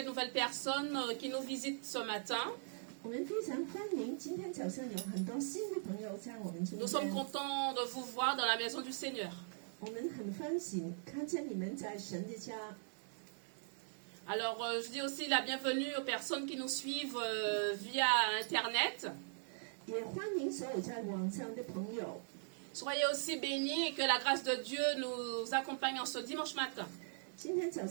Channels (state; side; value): silent; left; digital silence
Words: nouvelles personnes qui nous visitent ce matin. 我们非常欢迎今天早上有很多新的朋友在我们中 Nous sommes 间， contents de vous voir dans la maison du Seigneur. 我们很欢喜看见你们在神的家。 Alors, je dis aussi la bienvenue aux personnes qui nous suivent via Internet. 也欢迎所有在网上的朋友。 Soyez aussi bénis et que la grâce de Dieu nous accompagne en ce dimanche matin. 今天早